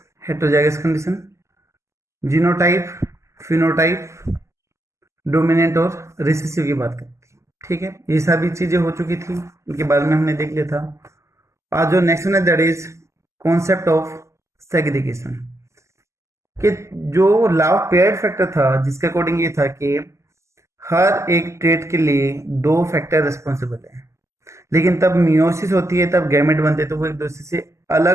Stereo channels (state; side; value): late; left; 0.14 ms